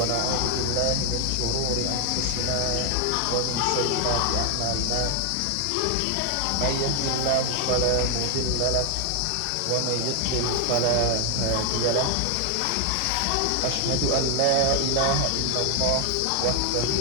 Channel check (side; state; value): both; different; correlation 0.00